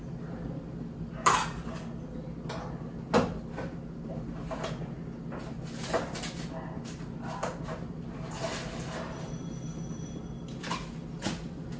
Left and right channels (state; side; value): identical; both; correlation 1.00